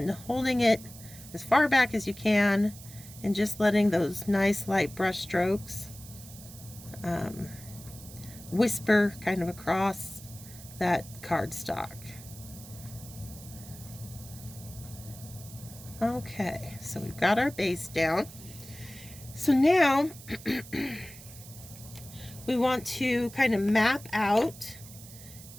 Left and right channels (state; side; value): noise; right; hiss, 17 dB below the sound